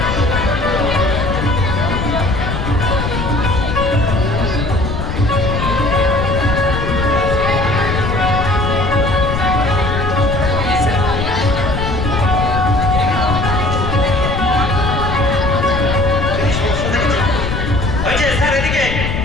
হয়েছে স্যার এদিকে।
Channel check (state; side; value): noise; left; rumble, 2 dB below the sound